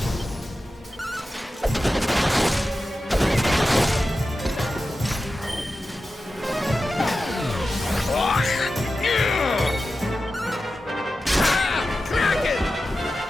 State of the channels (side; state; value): both; normal; correlation 0.93